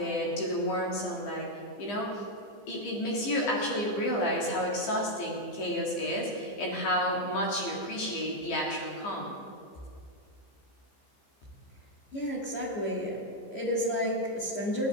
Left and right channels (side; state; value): right; late; 15 ms